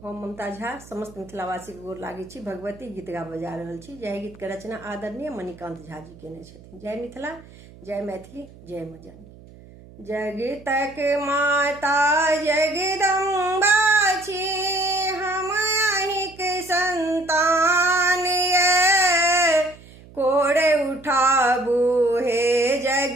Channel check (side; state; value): right; noise; hum, 21 dB below the sound